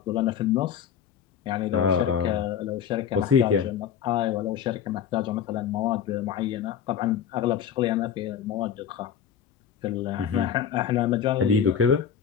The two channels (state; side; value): quieter; right; 8.3 dB